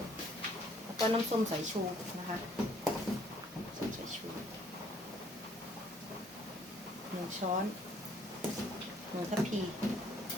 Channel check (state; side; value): normal; both; correlation 0.62